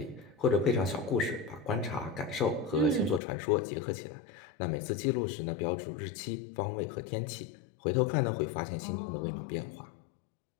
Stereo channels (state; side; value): drops out; right; at 3.2 s